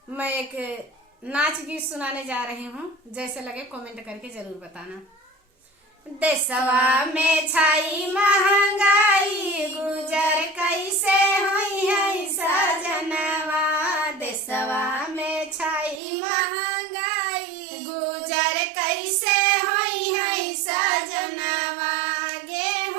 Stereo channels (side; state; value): left; drops out; at 16.0 s